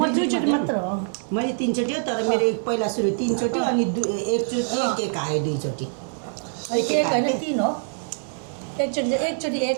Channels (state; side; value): silent; left; 62 dB below the other